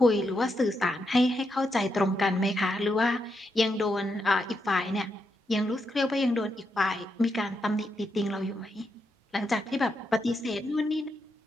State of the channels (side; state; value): both; normal; correlation 0.83